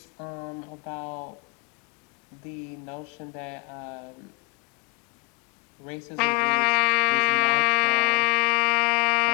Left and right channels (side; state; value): right; quieter; 27.1 dB